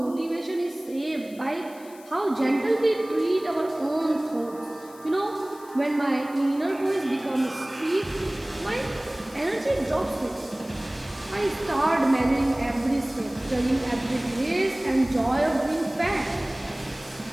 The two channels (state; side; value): noise; left; hiss, 22 dB below the sound